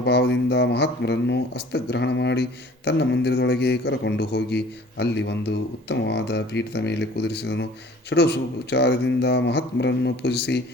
ಮಹಾತ್ಮರನ್ನು ಹಸ್ತಗ್ರಹಣ ಮಾಡಿ ತನ್ನ ಮಂದಿರದೊಳಗೆ ಕರಕೊಂಡು ಹೋಗಿ ಅಲ್ಲಿ ಒಂದು ಉತ್ತಮವಾದ ಪೀಠದ ಮೇಲೆ ಕುದುರಿಸಿದನು. ಷೋಡಶೋಪಚಾರದಿಂದ ಮಹಾತ್ಮರನ್ನು ಪೂಜಿಸಿ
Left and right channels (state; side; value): normal; both; correlation 0.50